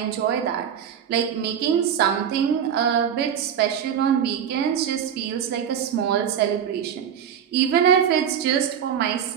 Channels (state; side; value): quieter; left; 8.5 dB